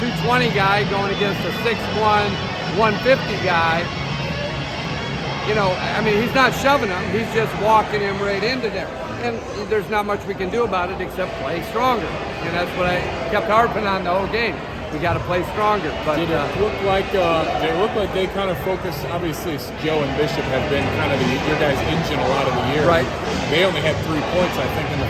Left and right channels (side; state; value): both; identical; correlation 1.00